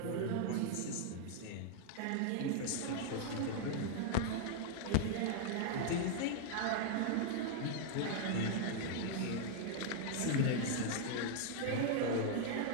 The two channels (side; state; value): both; different; correlation 0.00